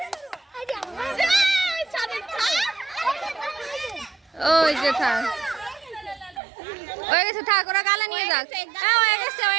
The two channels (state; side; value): drops out; left; at 6.4 s